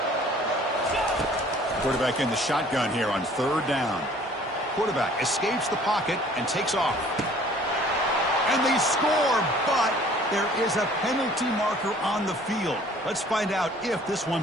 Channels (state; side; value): normal; both; correlation 0.53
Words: Quarterback in the shotgun here on third down. Quarterback escapes the pocket and takes off. And they score, but there is a penalty marker on the field. Let's find out if this